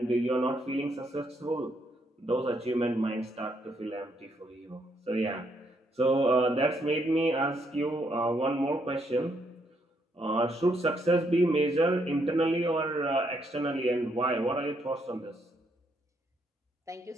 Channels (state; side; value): normal; both; correlation 0.74